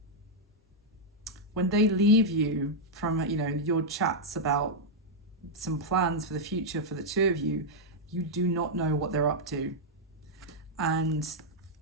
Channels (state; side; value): normal; both; correlation -0.03